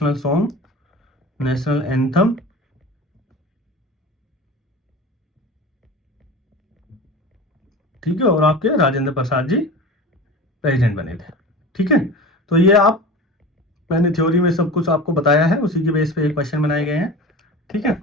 सॉन्ग, नेशनल एंथम, ठीक है, और आपके राजेंद्र प्रसाद जी प्रेसिडेंट बने थे, ठीक है। तो ये आप मैंने थ्योरी में सब कुछ आपको बताया है, उसी के बेस पे एक क्वेश्चन बनाए गए हैं, ठीक है।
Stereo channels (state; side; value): normal; both; correlation 0.34